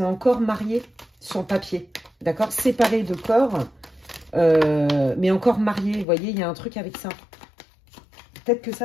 encore mariés sur le papier, d'accord, séparés de corps, mais encore mariés. Vous voyez, il y a un truc avec ça. Peut-être que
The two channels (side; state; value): right; drops out; at 6.1 s